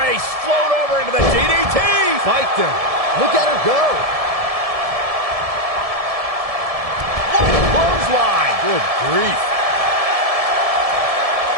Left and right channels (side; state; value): left; late; 1.7 ms